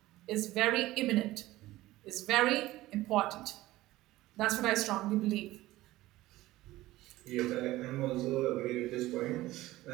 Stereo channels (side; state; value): left; quieter; 17.1 dB